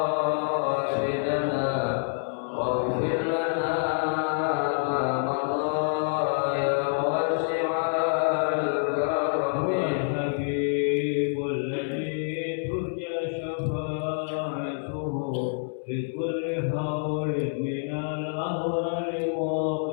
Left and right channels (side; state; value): right; silent; 60 dB below the other